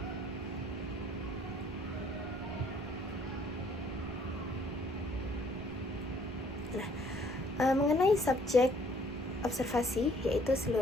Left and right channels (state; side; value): noise; right; rumble, 15 dB below the sound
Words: Nah, mengenai subjek observasi yaitu